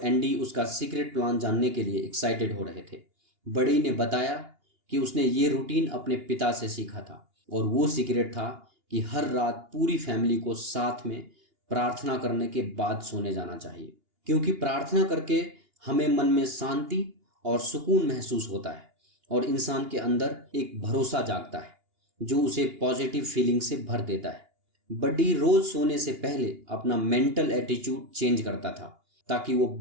एंडी उसका सीक्रेट प्लान जानने के लिए एक्साइटेड हो रहे थे। बड़ी ने बताया कि उसने ये रूटीन अपने पिता से सीखा था और वो सीक्रेट था कि हर रात पूरी फैमिली को साथ में प्रार्थना करने के बाद सोने जाना चाहिए, क्योंकि प्रार्थना करके हमें मन में शांति और सुकून महसूस होता है और इंसान के अंदर एक भरोसा जागता है जो उसे पॉजिटिव फीलिंग से भर देता है। बड्डी रोज सोने से पहले अपना मेंटल एटीट्यूड चेंज करता था ताकि वो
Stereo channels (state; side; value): late; left; 2.8 ms